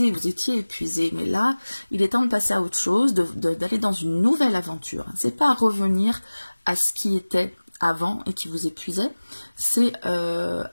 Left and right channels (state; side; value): inverted; both; correlation -1.00